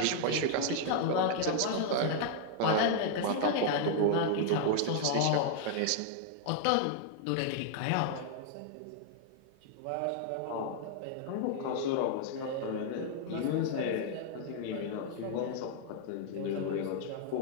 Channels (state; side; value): different; both; correlation 0.00